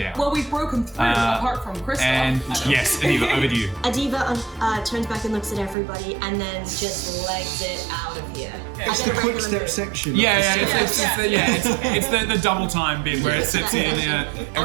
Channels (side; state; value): left; drops out; at 5.8 s